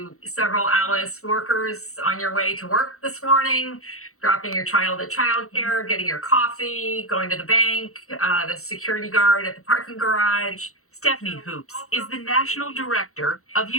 several Alice workers on your way to work this morning, dropping your child at childcare, getting your coffee, going to the bank, the security guard at the parking garage. Stephanie Hoops is the national director of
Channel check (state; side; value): late; right; 0.64 ms